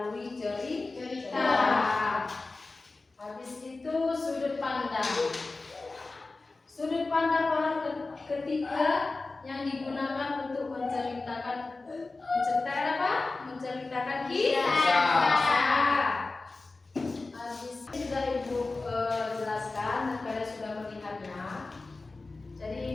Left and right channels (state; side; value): quieter; right; 3.5 dB